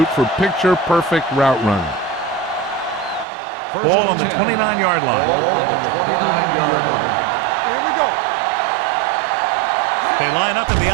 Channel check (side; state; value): left; drops out; at 3.2 s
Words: for picture-perfect route running. Ball on the 29-yard line. Ball on the 29-yard line. Here we go. They line up in the